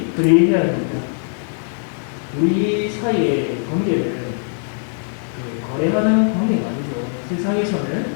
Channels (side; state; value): right; silent; 58 dB below the other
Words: 그리해야 합니다. 우리 사이의 관계를 거래하는 관계가 아니죠. 세상에서는